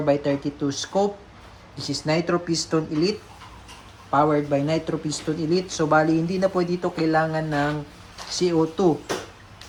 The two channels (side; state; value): both; identical; correlation 1.00